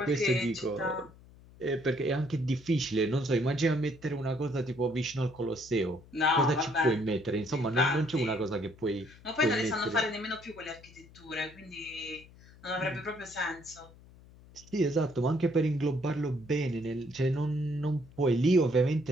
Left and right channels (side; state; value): left; noise; hum, 23 dB below the sound